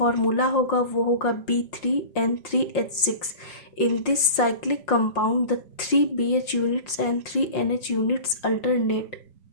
होगा वो होगा B3N3H6। In this cyclic compound the 3 BH units and 3 NH units alternate.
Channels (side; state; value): right; late; 5.6 ms